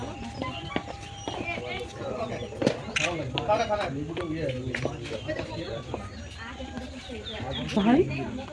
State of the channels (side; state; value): both; identical; correlation 1.00